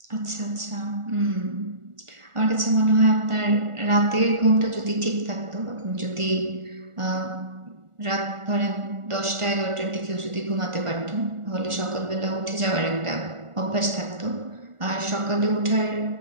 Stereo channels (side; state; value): left; late; 1.4 ms